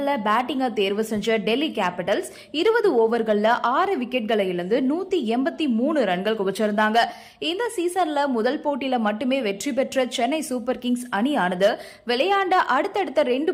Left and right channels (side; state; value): both; identical; correlation 1.00